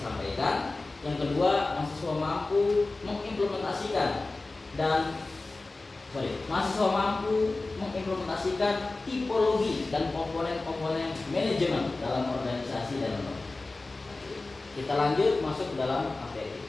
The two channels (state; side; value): quieter; right; 3.3 dB